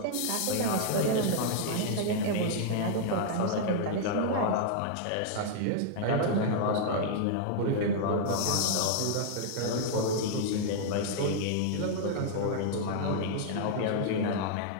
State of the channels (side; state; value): both; different; correlation -0.01